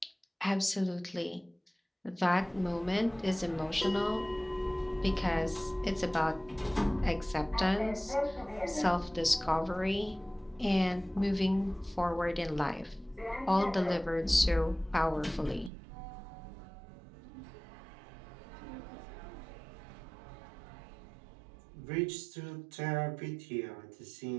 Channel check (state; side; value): drops out; left; at 15.7 s